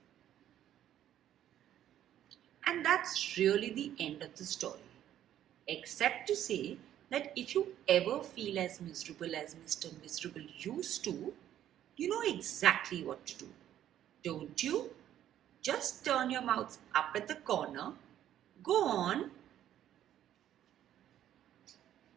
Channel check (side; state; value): left; quieter; 11.4 dB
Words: And that's really the end of the story. Except to say that if you ever feel as miserable as Mr. Miserable used to, you know exactly what to do. Don't you? Just turn your mouths up at the corner. Go on.